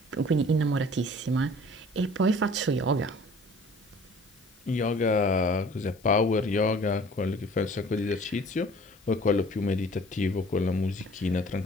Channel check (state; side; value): noise; left; hiss, 28 dB below the sound